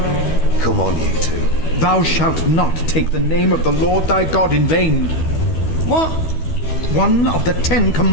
Come on, you two. Thou shalt not take the name of the Lord thy God in vain. What? One of the 10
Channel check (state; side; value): late; right; 12 ms